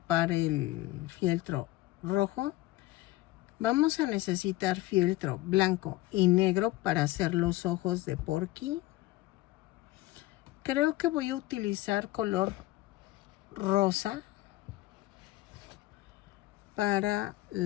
el fieltro rojo. Vamos a necesitar fieltro blanco y negro para hacer los ojos de Porky. Creo que voy a utilizar color rosa para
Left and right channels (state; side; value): quieter; right; 17.8 dB